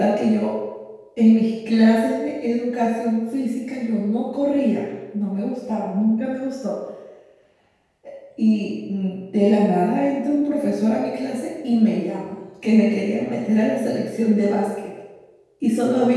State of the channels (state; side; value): identical; both; correlation 1.00